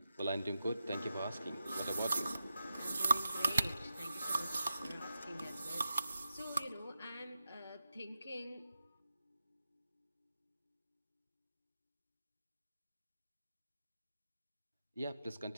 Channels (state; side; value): inverted; both; correlation -0.90